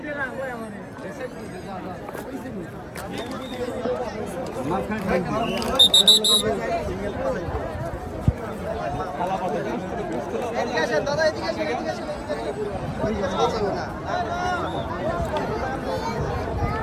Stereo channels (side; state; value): both; identical; correlation 1.00